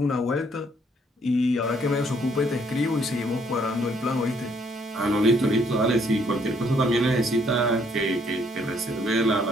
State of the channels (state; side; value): normal; both; correlation 0.67